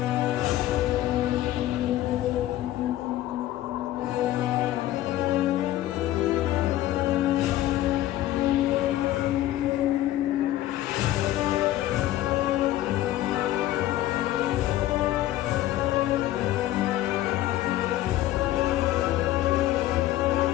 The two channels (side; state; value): right; quieter; 14.4 dB